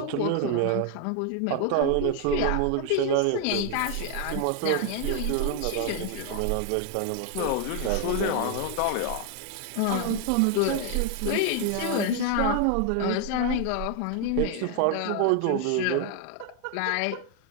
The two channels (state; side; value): different; both; correlation 0.00